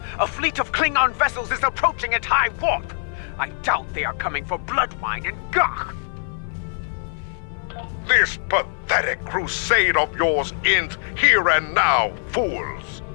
A fleet of Klingon vessels is approaching at high warp. I doubt they are coming for Bloodwine and Gach. This pathetic crusade of yours ends here and now, fools.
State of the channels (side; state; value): right; silent; 56 dB below the other